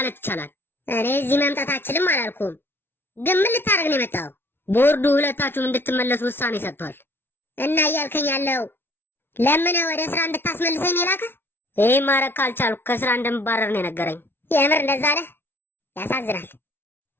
ይቻላል። እኔ እዚህ መምጣት አልችልም አላልኩም። ግን ምን ልታደርግ ነው የመጣው? ቦርዱ ሁለታችሁም እንድትመለሱ ውሳኔ ሰጥቷል። እና እያልከኝ ያለው ለምን ወደ ስራ እንድታስመልሰኝ ነው የላከህ? ይህ ማድረግ ካልቻልኩ ከስራ እንደምባረር ነው የነገረኝ። የምር እንደዛ አለ? ያሳዝናል።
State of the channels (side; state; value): right; late; 0.11 ms